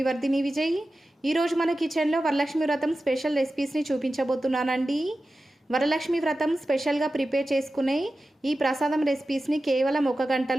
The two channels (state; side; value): normal; both; correlation 0.94